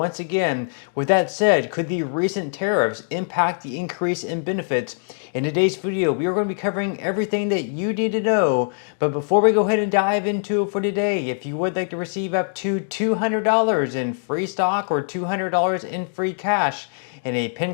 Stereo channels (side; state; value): right; silent; digital silence